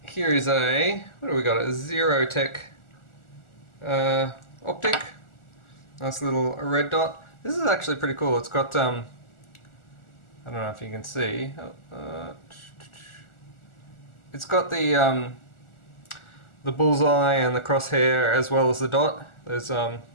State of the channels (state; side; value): late; right; 1.4 ms